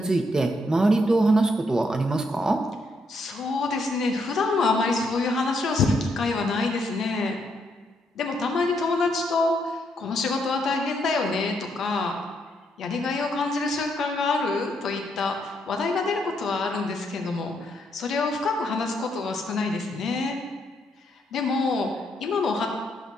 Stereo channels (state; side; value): normal; both; correlation 0.76